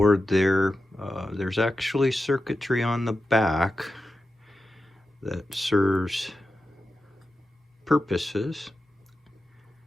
there. There's actually circuitry on the back that serves purposes.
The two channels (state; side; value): normal; both; correlation 0.91